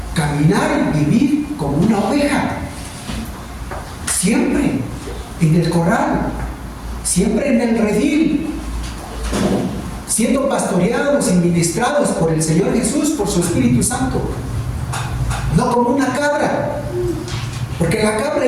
Caminar y vivir como una oveja, siempre en el corral, siempre en el redil, siendo pastoreados y ministrados por el Señor Jesús, por su Espíritu Santo, no como una cabra, porque la cabra,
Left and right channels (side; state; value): both; identical; correlation 1.00